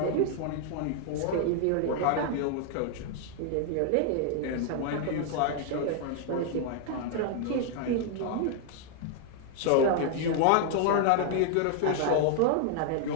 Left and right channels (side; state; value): both; different; correlation 0.00